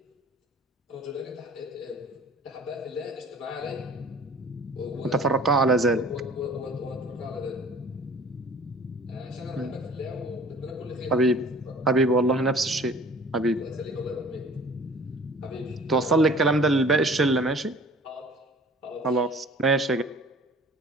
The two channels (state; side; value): normal; both; correlation 0.48